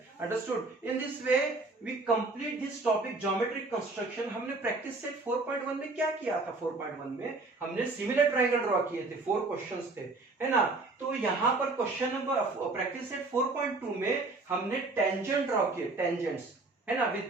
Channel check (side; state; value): left; quieter; 3.4 dB